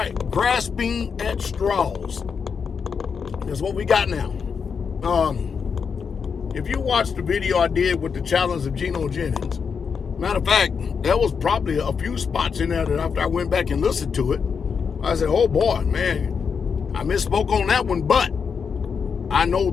grasping at straws. That's what we got now. If you watched the video I did with the challenge of Geno Jennings, matter of fact, there was probably a few spots in there that after I went back and listened to it, I said, oh boy, man, I misspoke on that one, but I know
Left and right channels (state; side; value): quieter; right; 6.1 dB